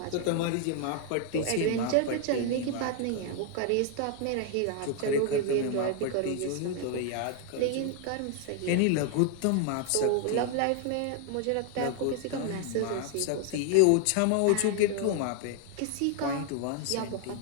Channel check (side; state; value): both; different; correlation 0.00